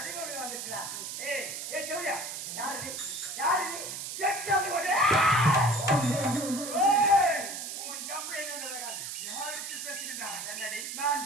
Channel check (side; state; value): right; noise; hiss, 6 dB below the sound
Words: வந்துட்டா. ஏய், ஏய் ஜோயா, யாரு நீ? யாரு நீ? எக்ஸாம் ஓடு. ஏய், உன் ஜம்பு என்னடா? யாருக்கு பேசுகிறா? என்னடி? நான்